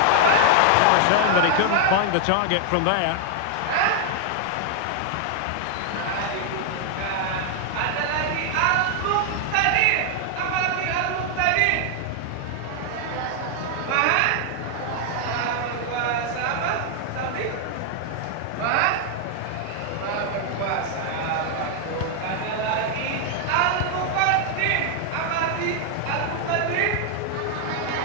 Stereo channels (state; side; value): different; both; correlation 0.00